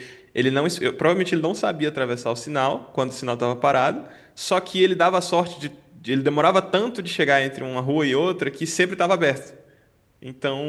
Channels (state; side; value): identical; both; correlation 1.00